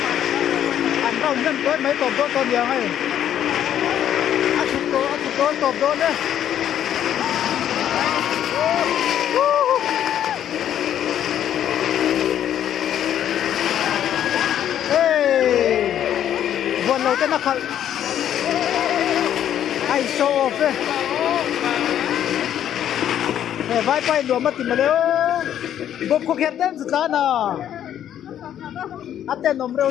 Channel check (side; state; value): right; quieter; 10.5 dB